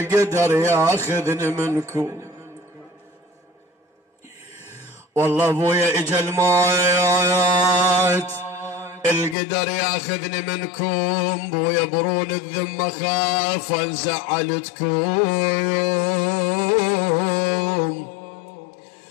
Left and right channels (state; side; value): drops out; right; at 9.3 s